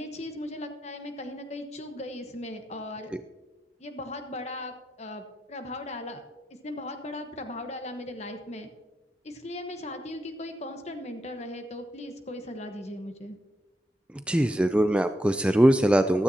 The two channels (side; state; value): both; normal; correlation 0.85